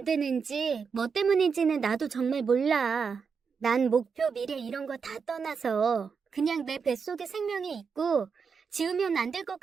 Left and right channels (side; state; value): left; quieter; 5.8 dB